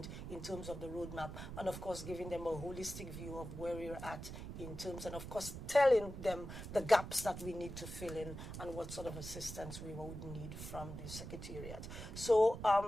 in terms of the roadmap, and of course giving them a holistic view of where we're at in terms, and of course telling them the gaps that we need to fill in and what sort of assistance we would need from the Secretariat. So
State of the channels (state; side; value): noise; right; rumble, 9 dB below the sound